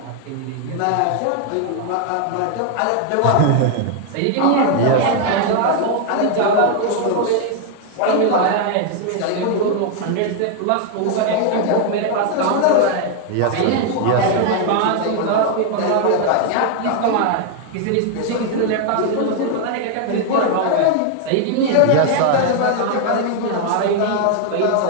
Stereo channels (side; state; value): both; different; correlation 0.00